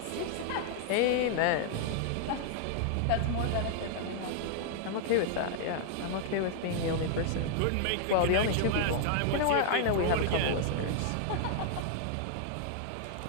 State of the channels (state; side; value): different; both; correlation -0.01